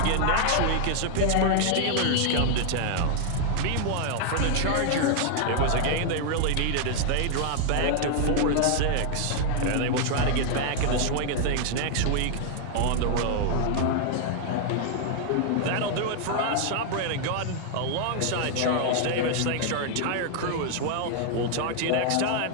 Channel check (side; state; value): both; different; correlation 0.00